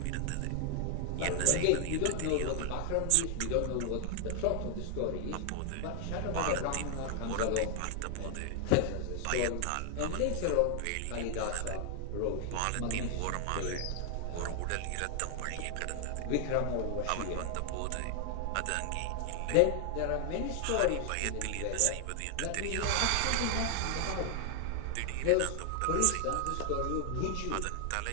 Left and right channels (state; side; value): different; both; correlation 0.00